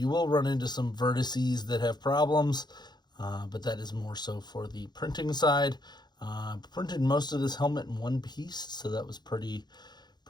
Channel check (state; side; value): late; right; 0.21 ms